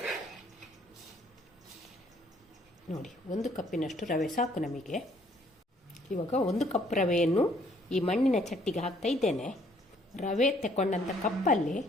ನೋಡಿ, 1 ಕಪ್ಪಿನಷ್ಟು ರವೆ ಸಾಕು ನಮಗೆ. ಇವಾಗ 1 ಕಪ್ ರವೆಯನ್ನು ಈ ಮಣ್ಣಿನ ಚಟ್ಟಿಗೆ ಹಾಕ್ತಾ ಇದ್ದೇನೆ. ರವೆ ತಗೊಂಡಂಥ ಕಪ್ಪಲ್ಲಿ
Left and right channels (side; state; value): both; normal; correlation 0.64